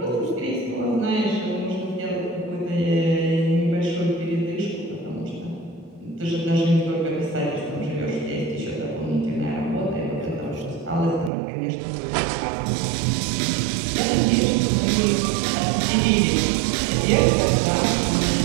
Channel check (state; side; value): drops out; left; at 11.3 s